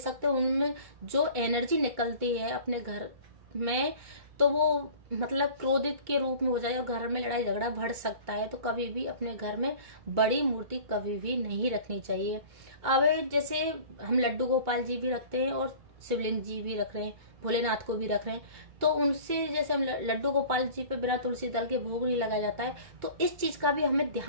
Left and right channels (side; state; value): left; late; 2.2 ms